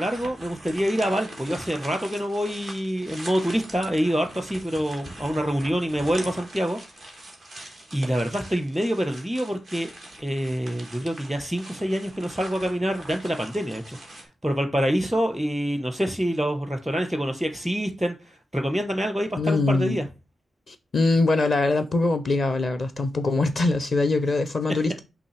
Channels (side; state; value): both; normal; correlation 0.91